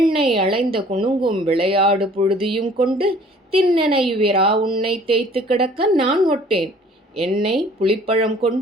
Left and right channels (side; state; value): both; normal; correlation 0.53